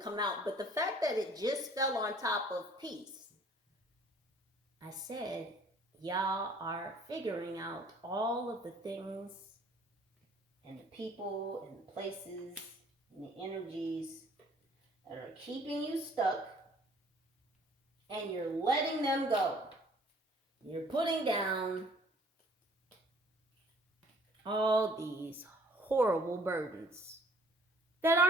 come out, but the fact that it just fell on top of peace, I said, y'all are figuring out all of the things and the people and the places and the energies that are keeping you stuck, and you're letting them go. You're putting down all these horrible burdens that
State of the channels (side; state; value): both; normal; correlation 0.56